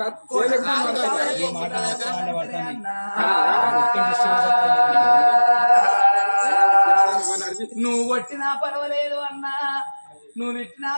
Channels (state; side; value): inverted; both; correlation -1.00